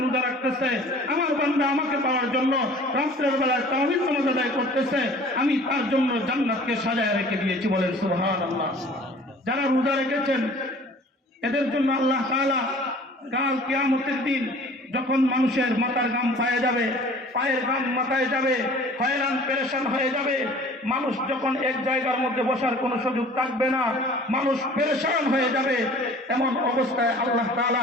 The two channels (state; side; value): normal; both; correlation 0.48